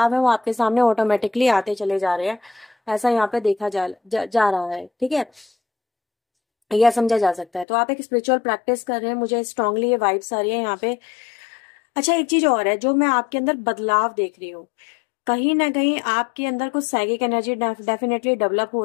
है वो आपके सामने ऑटोमेटिकली आते चले जा रहे हैं, ऐसा यहाँ पे देखा जा रहा है। ठीक है, यह समझा जा सकता है। तो आप एक स्पिरिचुअल प्रैक्टिस कर रहे हैं, मुझे स्ट्रांगली ये वाइब्स आ रही है यहाँ पे। अच्छा, एक चीज और है जो मैं आपके अंदर बदलाव देख रही हूँ, कहीं ना कहीं आपके अंदर कुछ साइकिक एनर्जी डेफिनेटली डेवलप हो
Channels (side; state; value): right; drops out; at 7.7 s